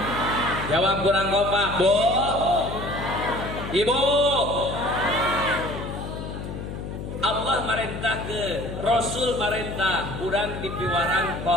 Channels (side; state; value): left; noise; hum, 7 dB below the sound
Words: jawab kurang kompak, Bu. Ibu. Allah merintah ke Rasul merintah urang dipiwarang